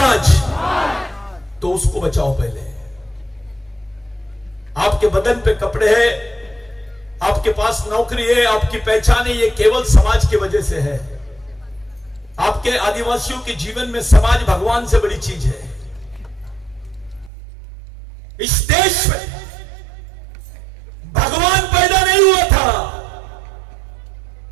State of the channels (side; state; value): left; drops out; at 17.3 s